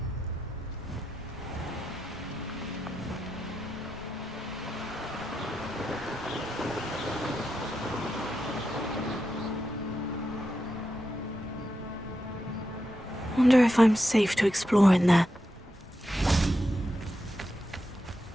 Wonder if I'm safe to explore in there.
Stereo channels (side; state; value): both; normal; correlation 0.87